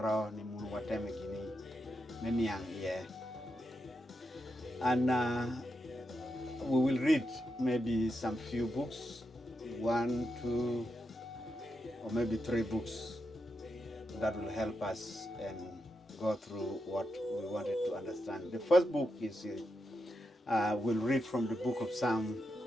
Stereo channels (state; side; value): normal; both; correlation 0.85